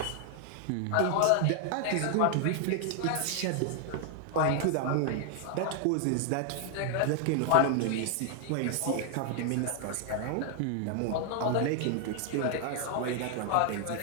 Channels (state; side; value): different; both; correlation 0.00